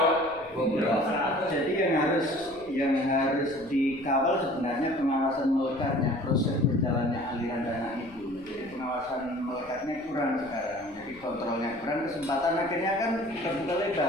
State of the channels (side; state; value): left; noise; rumble, 25 dB below the sound